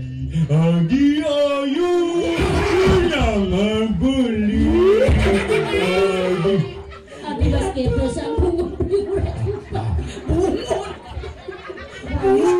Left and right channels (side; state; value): both; identical; correlation 1.00